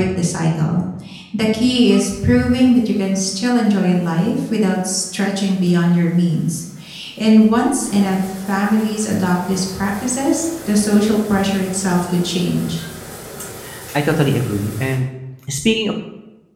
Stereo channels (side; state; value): both; identical; correlation 1.00